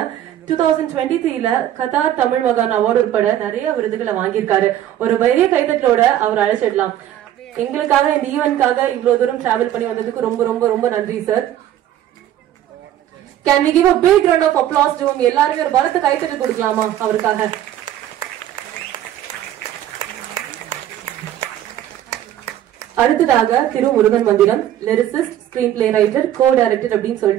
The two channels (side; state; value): left; quieter; 11.9 dB